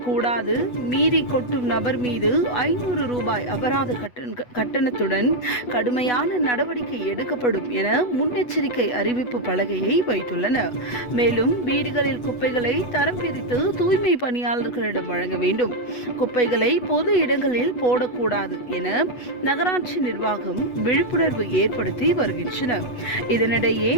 மீறி கொட்டும் நபர் மீது 500 ரூபாய் அபராத கட்டணத்துடன் கடுமையான நடவடிக்கை எடுக்கப்படும் என முன்னெச்சரிக்கை அறிவிப்பு பலகையை வைத்துள்ளனர். மேலும் வீடுகளில் குப்பைகளை தரம் பிரித்து தூய்மை பணியாளர்களிடம் வழங்க வேண்டும், குப்பைகளை பொது இடங்களில் போடக்கூடாது என நகராட்சி நிர்வாகம் விழிப்புணர்வு ஏற்படுத்தி வருகின்றனர். இதனிடையே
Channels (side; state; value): right; late; 8.1 ms